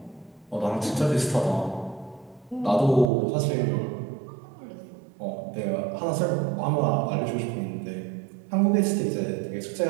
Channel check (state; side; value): drops out; left; at 3.1 s